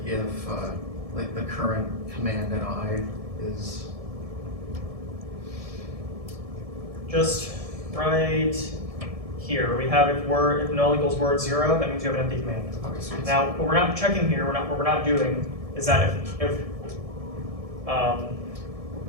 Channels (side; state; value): left; late; 1.7 ms